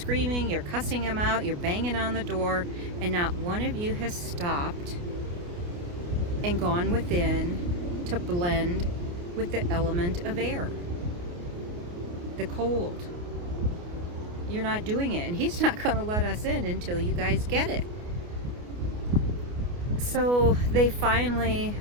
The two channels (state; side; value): late; left; 29 ms